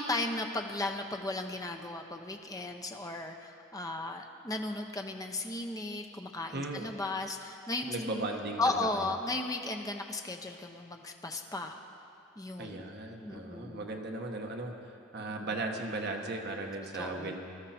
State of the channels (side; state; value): both; normal; correlation 0.41